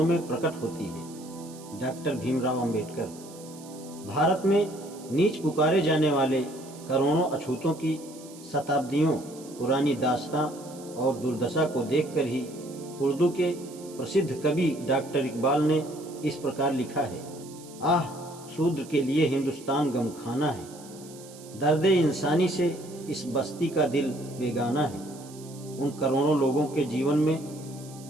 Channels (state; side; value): noise; right; hiss, 20 dB below the sound